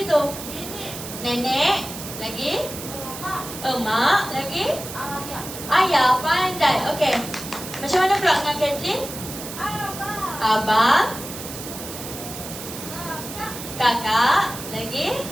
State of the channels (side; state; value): right; noise; hiss, 10 dB below the sound